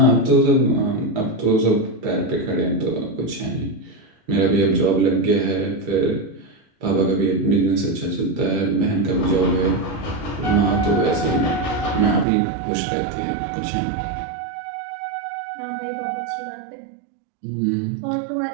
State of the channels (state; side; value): drops out; left; at 12.2 s